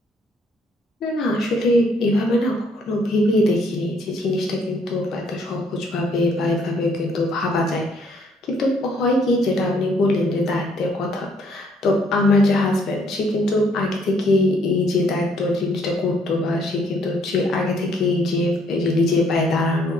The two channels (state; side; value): normal; both; correlation 0.66